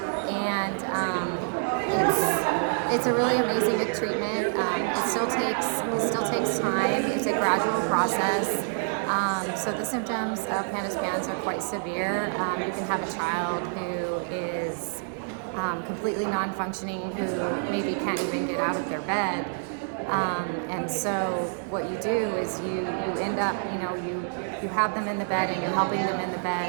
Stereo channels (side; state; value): left; silent; 60 dB below the other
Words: and it's a really amazing treatment. It still takes time. It's a gradual process. So the symptoms of PANDAS are quite severe. You can have a child who is completely non-functioning, who maybe can't even get out of their bed. And so what you do is you end up, you have them in the bed and you're helping them in the